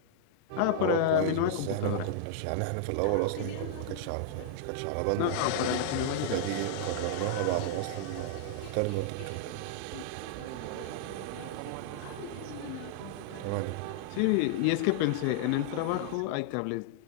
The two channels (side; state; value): both; different; correlation -0.01